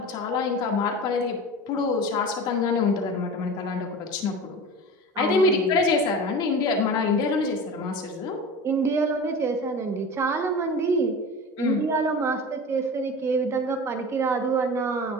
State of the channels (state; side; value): normal; both; correlation 0.33